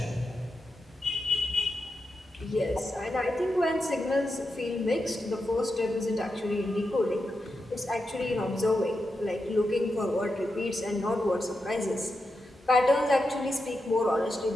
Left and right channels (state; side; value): normal; both; correlation 0.87